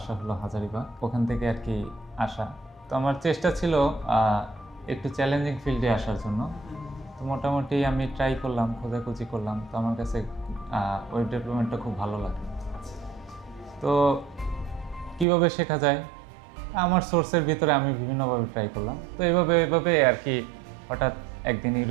হলো হাজারিবাগ, ওখান থেকে আর কি আসা। তো আমার চেষ্টা ছিল একটু চ্যালেঞ্জিং ফিল্ডে আসার জন্য। তো মোটামুটি আমি ট্রাই করলাম, খোঁজাখুঁজি করলাম। তো আমার কাছে ওয়েব ডেভেলপমেন্টটা খুব ভালো লাগে। তো কীভাবে শেখা যায়, আমার সোর্সের ভিতরে আমি বিভিন্নভাবে ট্রাই করলাম। তো এভাবে আর কি হঠাৎ একদিন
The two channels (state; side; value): drops out; left; at 15.2 s